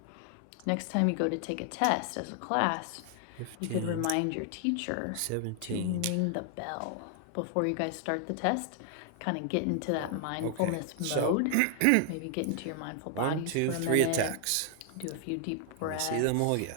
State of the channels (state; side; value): different; both; correlation 0.00